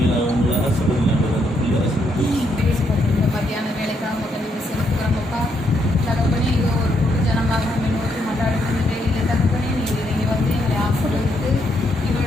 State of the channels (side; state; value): both; normal; correlation 0.76